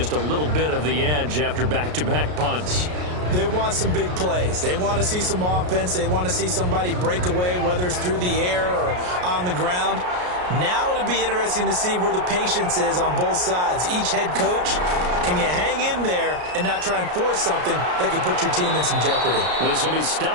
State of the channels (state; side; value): late; left; 33 ms